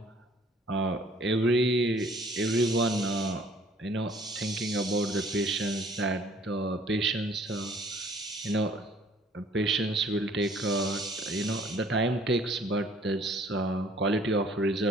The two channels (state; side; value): normal; both; correlation 0.57